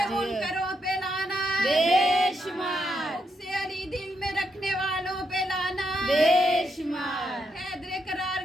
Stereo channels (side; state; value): both; normal; correlation 0.80